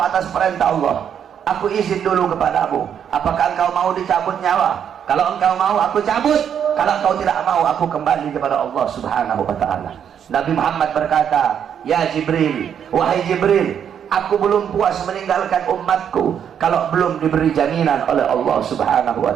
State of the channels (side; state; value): left; quieter; 8.5 dB